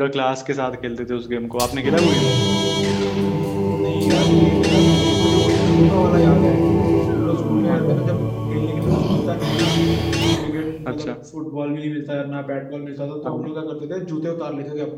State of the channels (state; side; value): identical; both; correlation 1.00